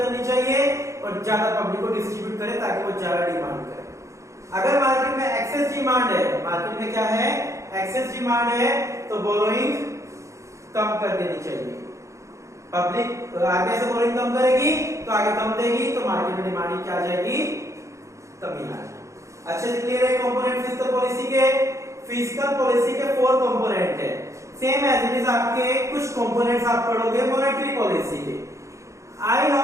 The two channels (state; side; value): late; left; 0.15 ms